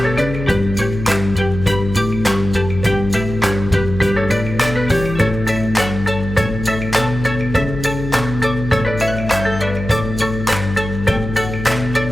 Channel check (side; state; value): left; noise; hum, 7 dB below the sound